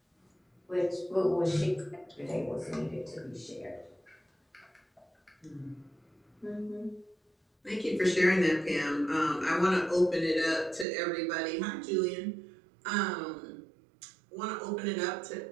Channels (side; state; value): left; drops out; at 10.9 s